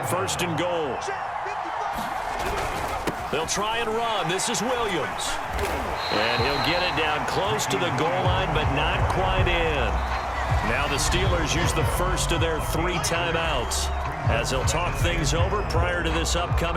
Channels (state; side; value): identical; both; correlation 1.00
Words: 1st and goal. They'll try and run. This is Williams. And he'll get it down close to the goal line, but not quite in. Now the Steelers use the first of their 3 timeouts as they'll talk things over prior to this